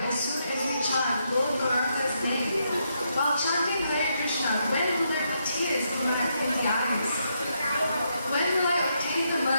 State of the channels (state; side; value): inverted; both; correlation -0.79